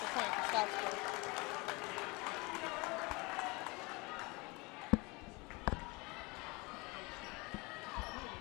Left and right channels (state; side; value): quieter; right; 26.0 dB